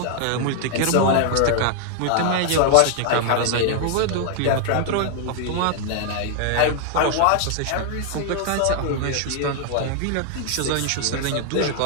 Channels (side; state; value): both; different; correlation 0.00